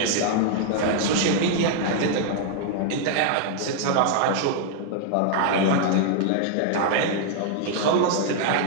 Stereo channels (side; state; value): both; different; correlation 0.00